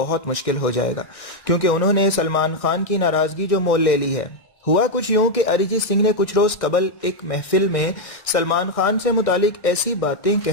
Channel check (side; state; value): right; late; 1.6 ms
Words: मुश्किल हो जाएगा, क्योंकि उन्होंने सलमान खान की नाराजगी जो मोल ले ली है। हुआ कुछ यूं कि अरिजीत सिंह ने कुछ रोज कबल एक महफिल में सलमान खान से मुतालिक ऐसी बातें